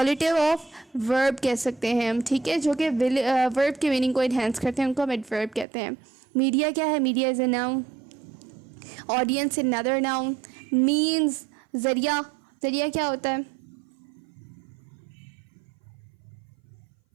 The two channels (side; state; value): left; drops out; at 5.7 s